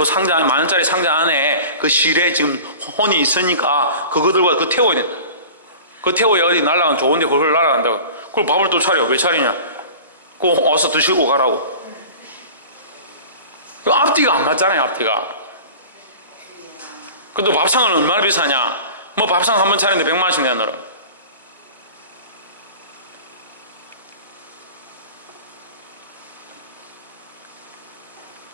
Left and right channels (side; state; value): both; inverted; correlation -0.38